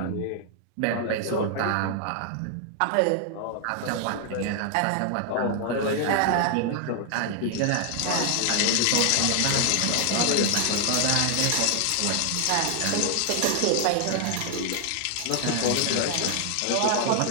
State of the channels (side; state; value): both; different; correlation 0.00